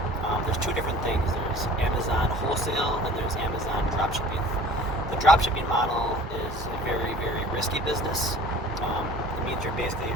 there's two different things. There's Amazon wholesale and there's Amazon dropshipping. The dropshipping model is a very, very risky business. It means you're basically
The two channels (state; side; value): normal; both; correlation 0.46